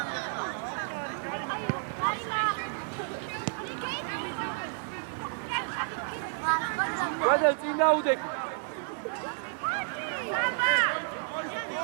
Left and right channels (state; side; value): silent; left; 57 dB below the other